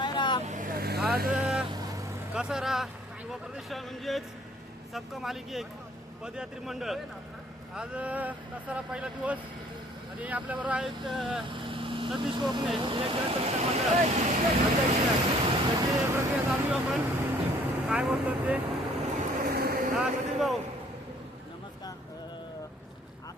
आज कसारा युवा प्रतिष्ठान म्हणजेच सबका मालिक एक पदयात्री मंडळ. आज कसारा पहिला दिवस आणि आपल्याबरोबर आहेत सतीश कोकणे, एक जन मंडळ अध्यक्ष. त्याची प्रक्रिया चालू आपण काय बोलतो ते. हा सतीश भाऊ नमस्कार.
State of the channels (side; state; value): both; normal; correlation 0.59